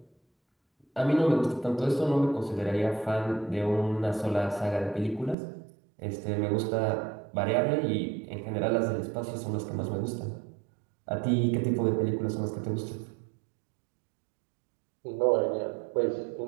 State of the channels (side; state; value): left; drops out; at 5.4 s